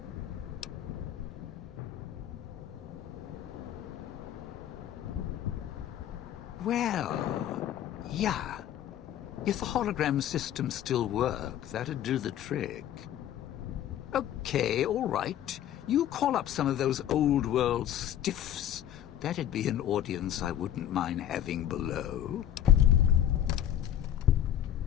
Well, yeah. If the hologram system still worked, that'd do the trick. Okay, all right. You call up some of those old-world stiffs. That'd be an audience I wouldn't mind having below.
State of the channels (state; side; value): quieter; right; 11.2 dB